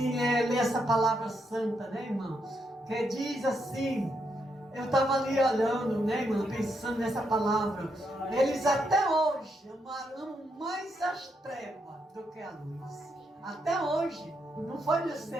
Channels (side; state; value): both; normal; correlation 0.79